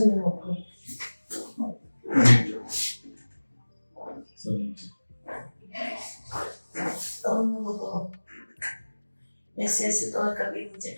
ऊपर ऐसे ऐसे तो कभी नहीं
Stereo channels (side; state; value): both; inverted; correlation -1.00